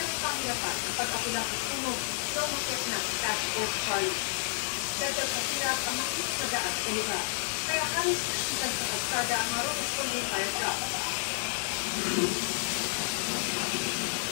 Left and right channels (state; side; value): silent; right; 57 dB below the other